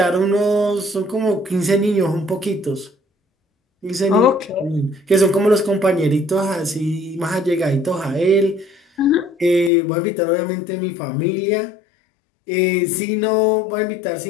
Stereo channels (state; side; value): drops out; right; at 9.7 s